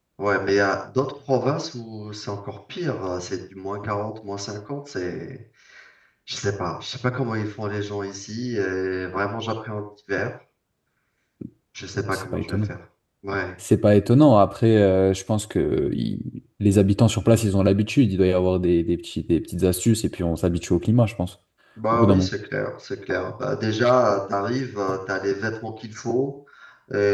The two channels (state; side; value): identical; both; correlation 1.00